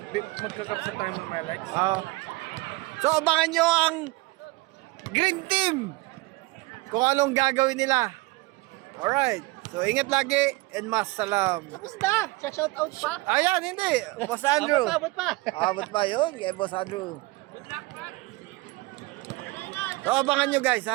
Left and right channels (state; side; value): quieter; left; 23.1 dB